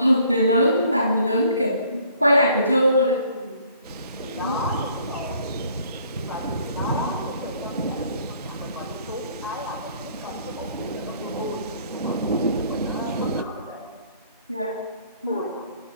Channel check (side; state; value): both; inverted; correlation -0.60